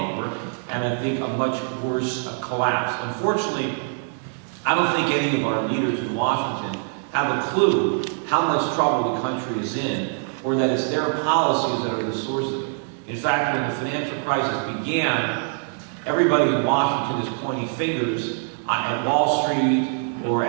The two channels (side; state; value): left; silent; 61 dB below the other